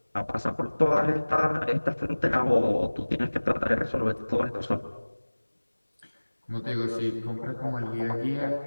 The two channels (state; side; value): inverted; both; correlation -1.00